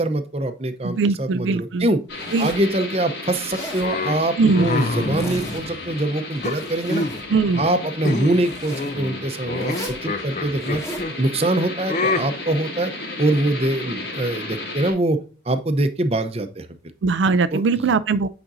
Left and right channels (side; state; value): both; normal; correlation 0.52